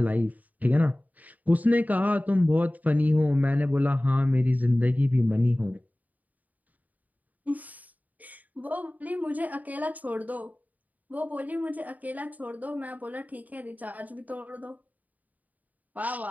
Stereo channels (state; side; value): late; left; 0.077 ms